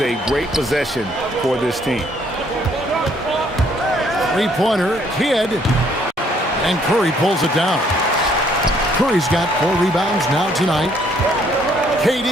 great possession for this team. 3-pointer, Kidd. And Curry pulls it down. Curry's got 4 rebounds now tonight.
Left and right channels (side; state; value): both; normal; correlation 0.65